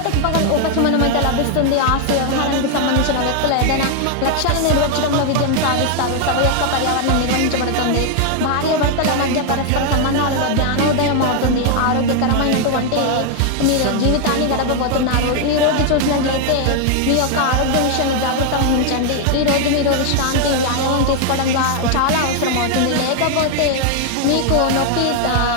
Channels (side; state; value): both; different; correlation 0.00